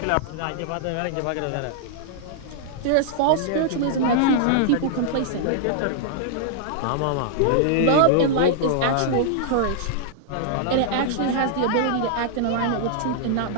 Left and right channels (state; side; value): different; both; correlation -0.01